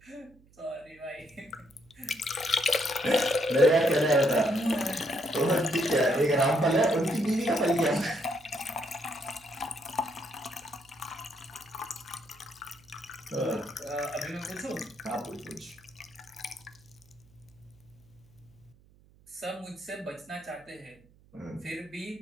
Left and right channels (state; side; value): noise; right; hum, 28 dB below the sound